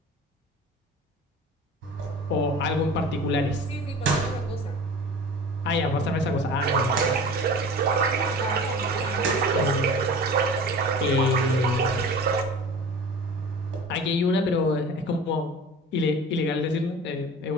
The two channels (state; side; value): normal; both; correlation 0.38